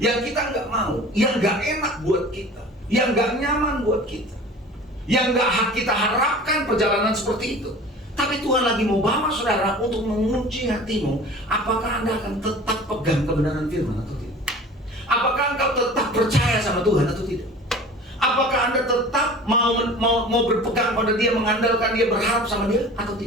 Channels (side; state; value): both; normal; correlation 0.41